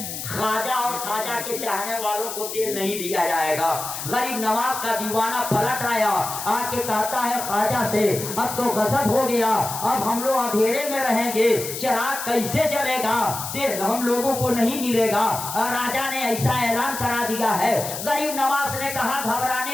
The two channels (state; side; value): noise; left; hiss, 7 dB below the sound